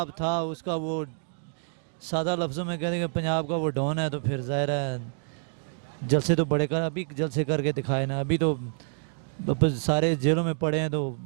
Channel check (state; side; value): silent; left; digital silence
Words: था, उसका वो सादा लफ्ज़ों में कहते हैं पंजाब का वो डॉन है, तो फिर ज़ाहिर है जलसे तो बड़े कर, अभी जलसे करके दिखाए ना। अभी तो सारे जेलों में पड़े हैं तो